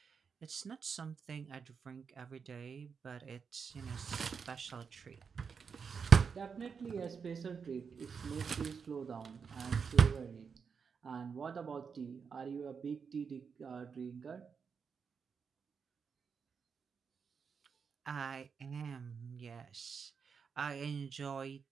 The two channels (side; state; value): left; quieter; 6.0 dB